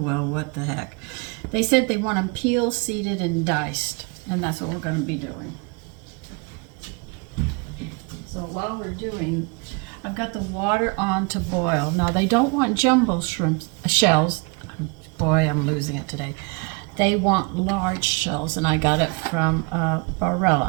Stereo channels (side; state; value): left; quieter; 31.1 dB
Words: what the heck. They said they want them peeled, seeded, and diced. And that's what we're going to be doing. So while we're doing, I've got the water on to boil. Now they don't want jumbo shells. Boy, I'm losing it today. They want large shells, and I got it from